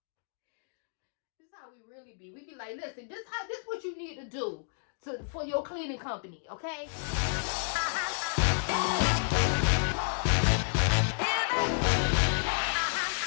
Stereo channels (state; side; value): silent; right; digital silence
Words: This is how we really be. We be like, listen, this what you need to do for your cleaning company, okay?